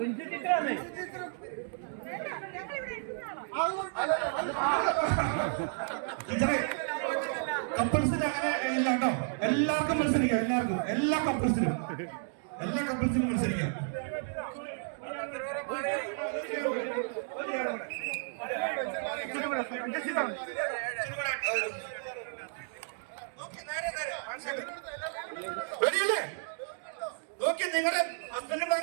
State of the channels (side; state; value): left; silent; digital silence